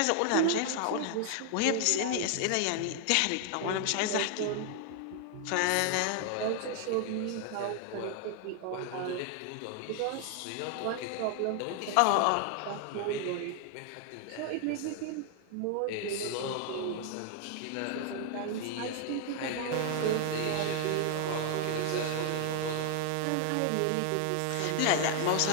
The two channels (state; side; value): different; both; correlation 0.00